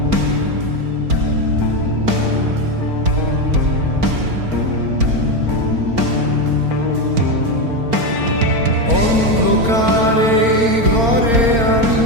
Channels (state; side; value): late; left; 4.4 ms